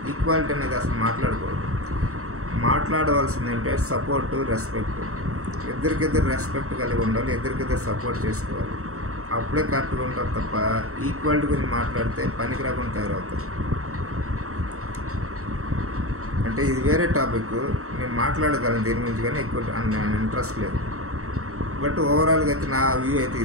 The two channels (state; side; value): late; left; 0.64 ms